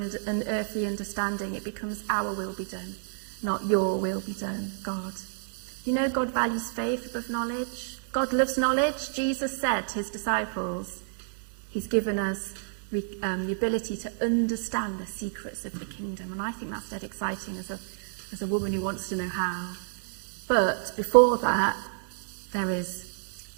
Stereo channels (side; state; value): left; silent; digital silence